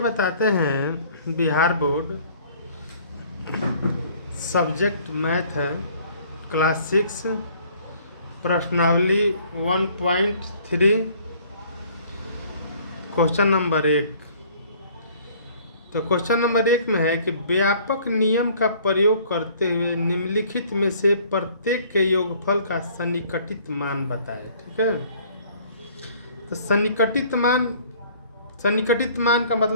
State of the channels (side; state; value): both; inverted; correlation -0.56